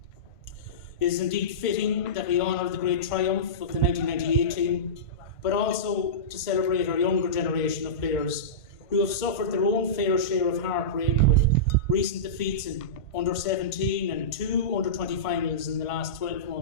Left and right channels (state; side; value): late; right; 1.5 ms